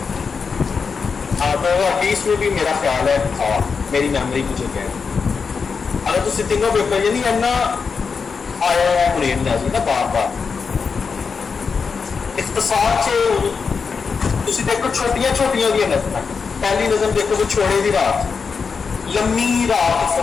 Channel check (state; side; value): quieter; right; 5.4 dB